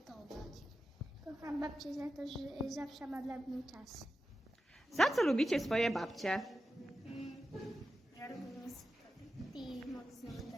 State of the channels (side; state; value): both; normal; correlation 0.92